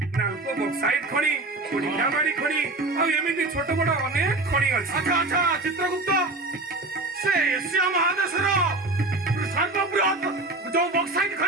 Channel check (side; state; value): left; quieter; 3.1 dB